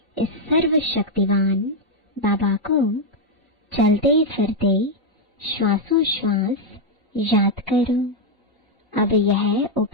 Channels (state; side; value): normal; both; correlation 0.01